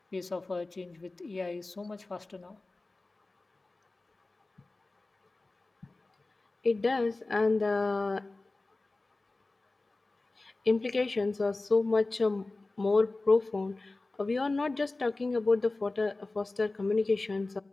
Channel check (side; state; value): right; quieter; 3.2 dB